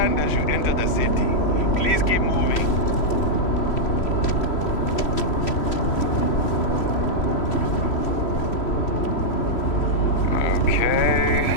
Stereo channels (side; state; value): right; late; 3.1 ms